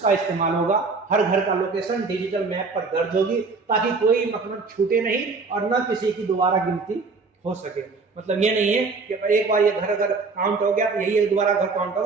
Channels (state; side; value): quieter; left; 4.3 dB